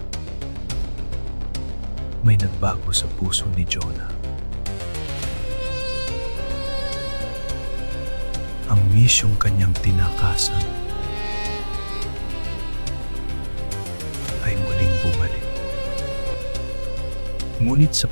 may nagbago sa puso ni Jonah. Ang misyong kanyang tinakasan ay muling bumalik. Ngunit sa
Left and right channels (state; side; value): inverted; both; correlation -1.00